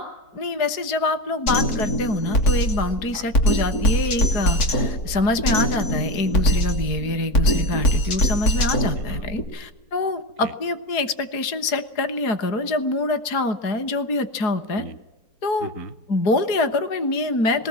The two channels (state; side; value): late; right; 4.7 ms